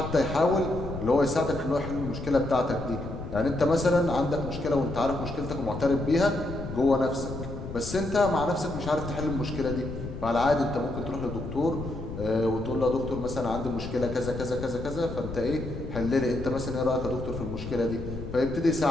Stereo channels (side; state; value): left; noise; rumble, 8 dB below the sound